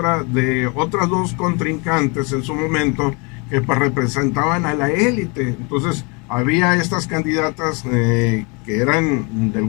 de otras dos contrincantes en su momento que pues representaban a la élite. Entonces había estas candidatas que eran de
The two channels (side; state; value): right; quieter; 31.4 dB